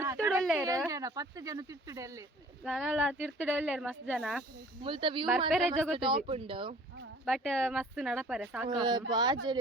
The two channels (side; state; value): both; normal; correlation 0.50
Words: 10 ಜನ ತಿರ್ತುಡಲ್ಲೆ ನಾನಲ್ಲ ತಿರ್ತುಡಲ್ಲೇರು ಮಸ್ತ್ ಜನ ಮುಲ್ತ ವ್ಯೂ ಬರ್ಪೆರೆ ಜಗತ್ತು ಟಾಪ್ ಉಂಡು ಬಟ್ ಮಸ್ತ್ ನಡಪರೆ ಸಾಕು